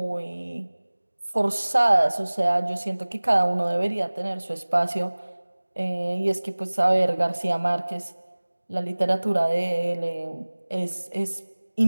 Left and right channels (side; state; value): both; inverted; correlation -1.00